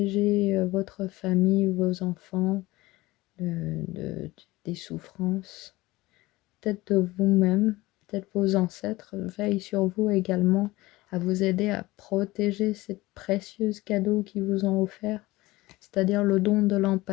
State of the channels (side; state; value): right; quieter; 19.6 dB